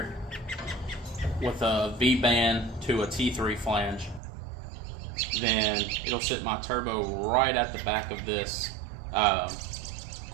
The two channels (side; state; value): left; drops out; at 4.2 s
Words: with a V-band to a T3 flange, then it'll sit my turbo right at the back of this